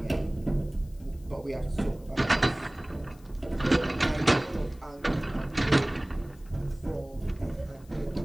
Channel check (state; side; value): noise; left; hiss, 28 dB below the sound